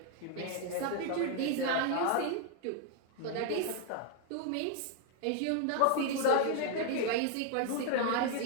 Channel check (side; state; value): both; different; correlation 0.00